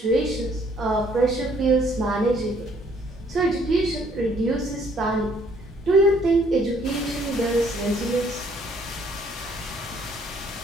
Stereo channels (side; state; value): both; normal; correlation 0.63